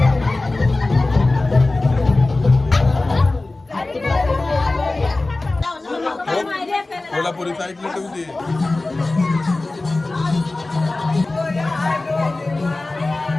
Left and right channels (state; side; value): quieter; right; 3.1 dB